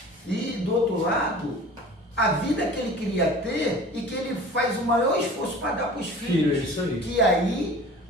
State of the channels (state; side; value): normal; both; correlation 0.42